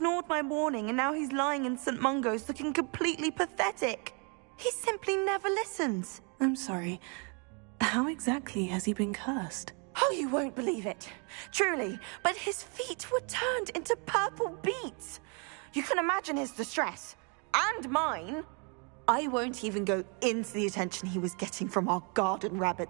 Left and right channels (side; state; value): left; quieter; 36.0 dB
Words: my warning and now he's lying in St. Mungo's looking completely pathetic. He simply never listens. I'm sorry. How exactly has he been cursed? Oh, you won't believe it. Truly, but his feet were turned into purple beets. You can imagine his distress. And mine. I won't even go into the attention he was getting from our garden